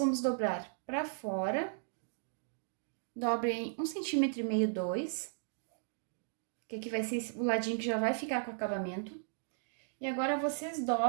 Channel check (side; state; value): left; silent; digital silence